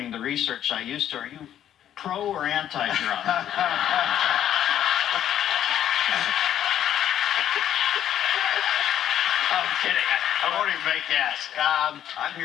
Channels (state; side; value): quieter; right; 10.8 dB